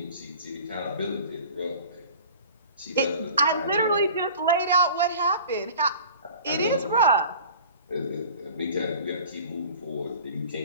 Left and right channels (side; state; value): both; inverted; correlation -0.42